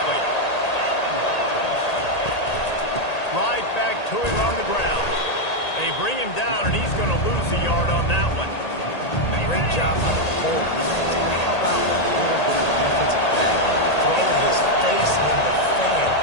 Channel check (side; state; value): right; late; 1.8 ms